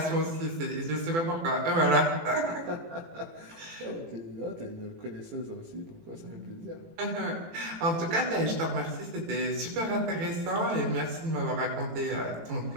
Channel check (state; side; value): late; left; 18 ms